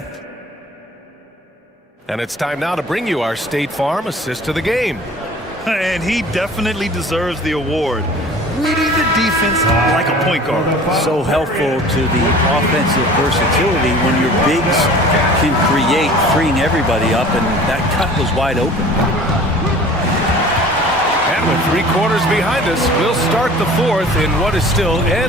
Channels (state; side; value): normal; both; correlation 0.45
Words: And it's time now to bring you our State Farm assist to the game. And he definitely deserves the award. Reading the defense like a point guard. So helpful to the offensive versatility when your bigs can create, freeing everybody up, and that cut was wide open. And with 3 quarters behind us, we'll start the fourth in what is still